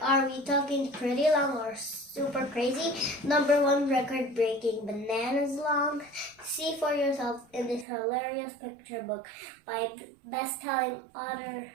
are we talking pretty long or super crazy? #1 record-breaking bananas long? See for yourself in this hilarious picture book by best-selling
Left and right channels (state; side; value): drops out; left; at 7.9 s